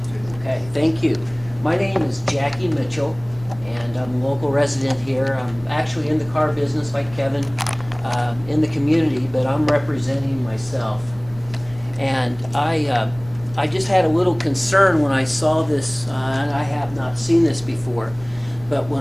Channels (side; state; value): right; noise; rumble, 21 dB below the sound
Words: Okay, thank you. My name is Jackie Mitchell, and I'm a local resident here. I'm actually in the car business like Kevin, in the community, but I'm representing myself. And I just had a little concern when I saw this, and I have not seen this before, but